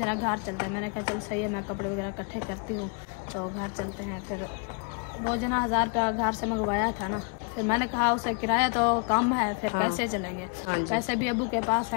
घर चलते हैं। मैंने कहा चलो सही है, मैं कपड़े वगैरह इकट्ठे करती हूँ तो घर चलते हैं। फिर वो जना 1000 रुपया घर से मंगवाया था ना, फिर मैंने कहा उसे किराया तो कम है, फिर कैसे चलेंगे? पैसे भी अबू के पास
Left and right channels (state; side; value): quieter; right; 35.6 dB